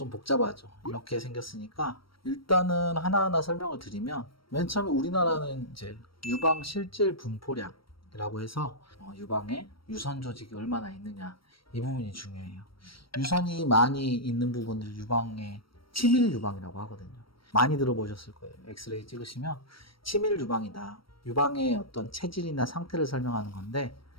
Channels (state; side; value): late; right; 0.74 ms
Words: 복잡하죠. 이렇게 생겼으니까 일단은 하나하나 설명을 드리면 맨 처음에 우리나라는 이제 유방 실질 분포량이라고 해서 유방에 유선 조직이 얼마나 있느냐 이 부분이 중요해요. 유선이 많이 있는 부분을 유방의 치밀 유방이라고 하거든요. 많이 들어보셨을 거예요. 엑스레이 찍으시면 치밀 유방이다. 유방의 어떤 체질이나 상태를 설명하는 건데